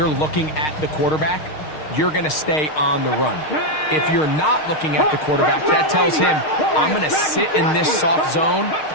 looking at the quarterback, you're going to stay on the run. If you're not looking at the quarterback, that tells him, I'm going to sit in this soft zone.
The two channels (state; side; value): late; right; 6.5 ms